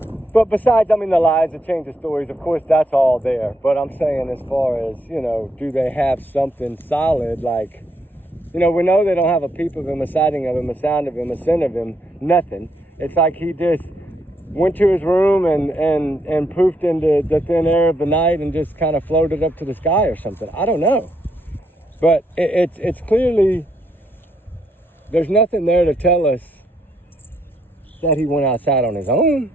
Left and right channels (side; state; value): both; normal; correlation 0.76